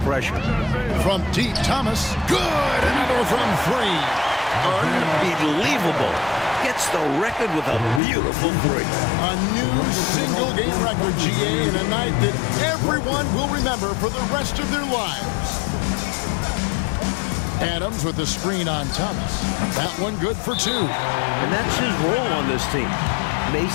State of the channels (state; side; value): drops out; right; at 8.0 s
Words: From deep, Thomas. Good! Another from 3. Unbelievable. Gets the record with a beautiful 3. A new single-game record, GA, in a night that everyone will remember for the rest of their lives. Adams with the screen on Thomas. That one good for 2. And that's his role on this team.